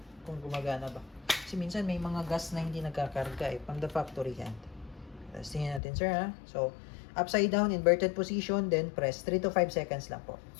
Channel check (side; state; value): right; drops out; at 5.8 s